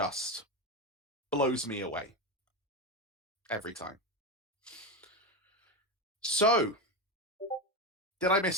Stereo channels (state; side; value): normal; both; correlation 0.15